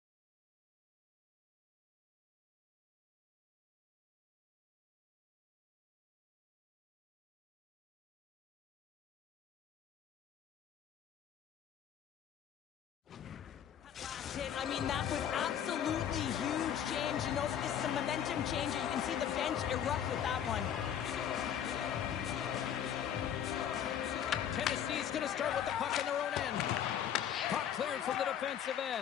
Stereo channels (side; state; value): right; quieter; 9.3 dB